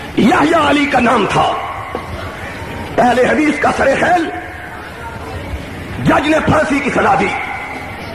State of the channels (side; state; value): both; identical; correlation 1.00